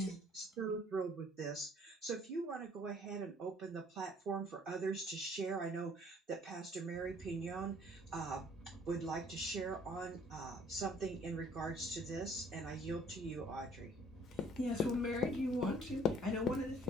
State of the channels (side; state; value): both; normal; correlation 0.58